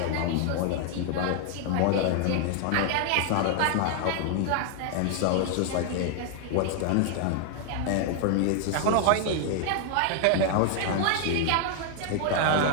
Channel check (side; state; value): both; different; correlation 0.00